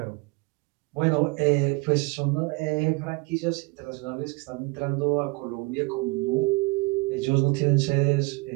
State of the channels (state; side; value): quieter; left; 27.3 dB